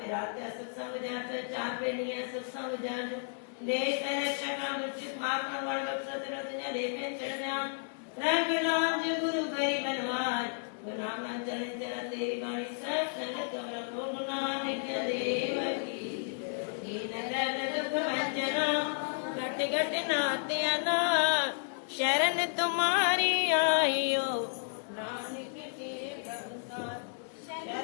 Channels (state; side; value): silent; right; digital silence